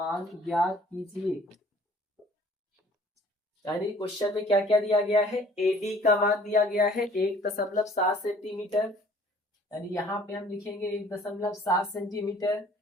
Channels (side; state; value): both; normal; correlation 0.54